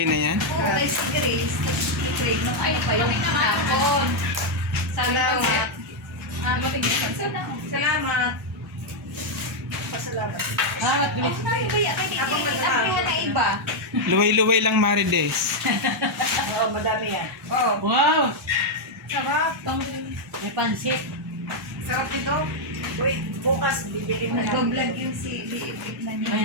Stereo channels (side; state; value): both; normal; correlation -0.01